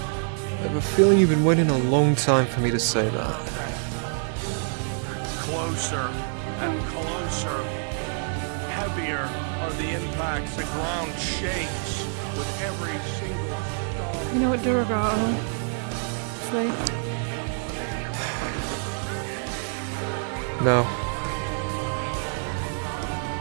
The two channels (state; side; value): silent; left; 55 dB below the other